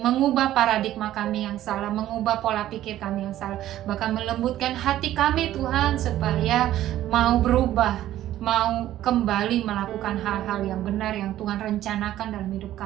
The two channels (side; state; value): left; quieter; 13.3 dB